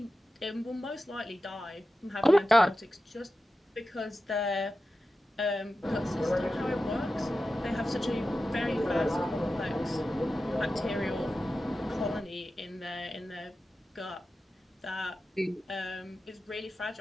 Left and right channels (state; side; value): normal; both; correlation 0.93